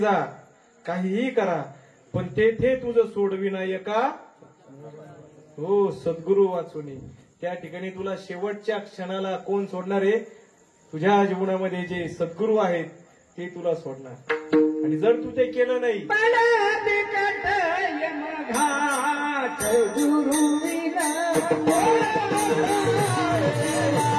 काहीही करा, पण तेथे तुझं सोडविनायका हो सद्गुरू वाचुनी. त्या ठिकाणी तुला शेवटच्या क्षणाला कोण सोडणार आहे? तुझ्या जीवनामध्ये जे सद्गुरू आहेत ते तुला सोडणार. आणि जर तू ते केलं नाही,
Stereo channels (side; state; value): both; identical; correlation 1.00